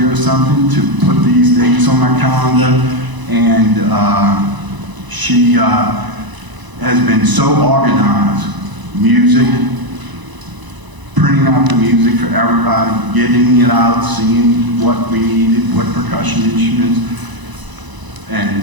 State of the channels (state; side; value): late; left; 1.0 ms